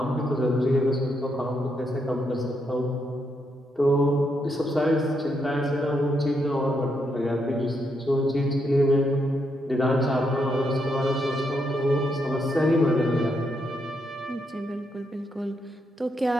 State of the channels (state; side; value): normal; both; correlation 0.79